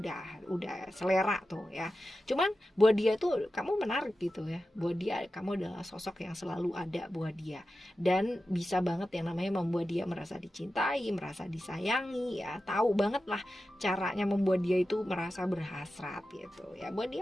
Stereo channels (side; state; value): both; normal; correlation 0.92